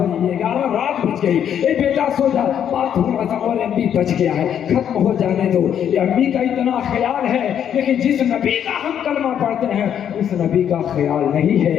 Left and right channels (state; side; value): quieter; right; 9.2 dB